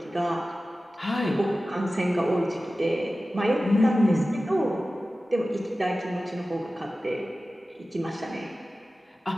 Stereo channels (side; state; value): both; normal; correlation 0.95